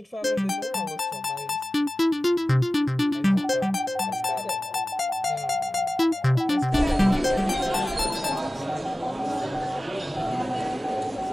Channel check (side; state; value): both; normal; correlation 0.96